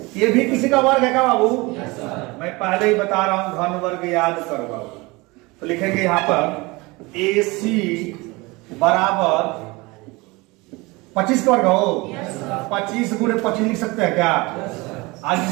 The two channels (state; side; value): quieter; left; 24.1 dB